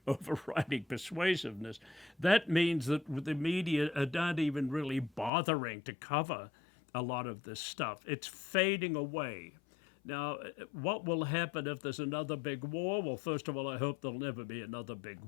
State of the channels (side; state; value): right; drops out; at 5.3 s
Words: overriding persuasiveness. That means that the media are not even really bothering to cover a lot of this stuff. It's fading away. Now, what will happen if there's another big war? Well, first of all, I hope there'll never be another big